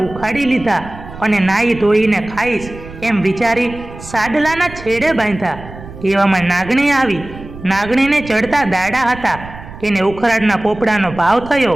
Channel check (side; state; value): right; noise; rumble, 15 dB below the sound